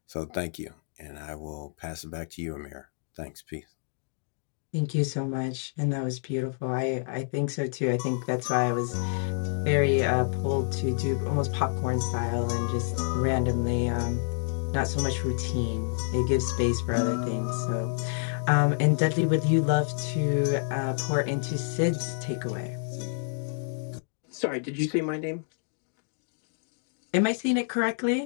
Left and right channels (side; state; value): right; silent; digital silence